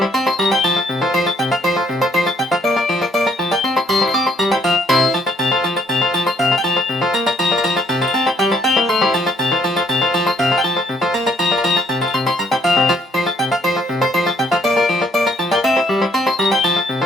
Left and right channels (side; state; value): both; normal; correlation 0.66